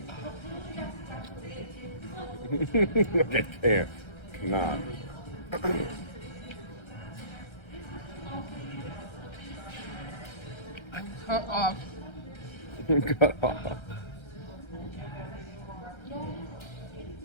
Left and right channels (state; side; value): late; right; 1.3 ms